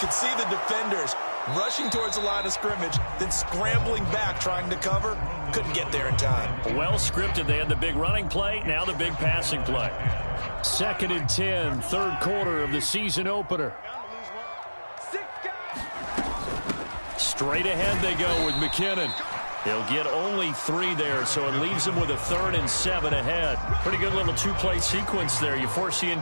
see the defenders rushing towards the line of scrimmage, then scrambling back trying to cover. Couldn't get there in time. Well scripted. They had the big running play, now the big passing play. 2nd and 10, third quarter of the season opener. Straight ahead they go with McKinnon. He'll get only 3 there, so it leaves him with a 3rd and 7 ahead. Pretty good little 2-play sequence there. You foresee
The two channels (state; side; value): inverted; both; correlation -1.00